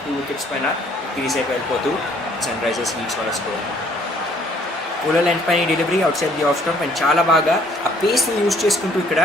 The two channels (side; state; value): both; normal; correlation 0.62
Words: 2 wickets పైన సిరీస్ అయిపోయి వెళ్ళిపోతూ సన్రైజర్స్ లీడ్స్ వాళ్ళ స్కోర్. పూలర్ లెంత్ పైన delivery outside the off stump and చాలా బాగా ఆ పేస్ని యూజ్ చేసుకుంటూ ఇక్కడ